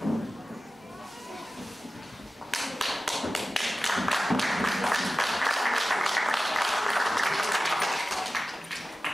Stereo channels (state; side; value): normal; both; correlation 0.95